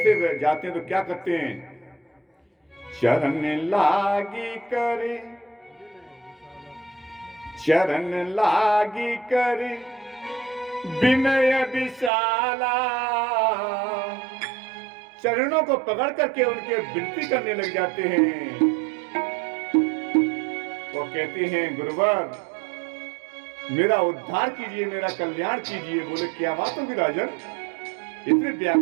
जाते हैं तो क्या करते हैं? चरण लागी करे, चरण लागी करे विनय विशाला। चरणों को पकड़ करके उनके विनती करने लग जाते हैं। वो कहते हैं गुरुवर मेरा उद्धार कीजिए, मेरा कल्याण कीजिए। बोले क्या बात होगी राजन, इतने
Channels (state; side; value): drops out; left; at 12.1 s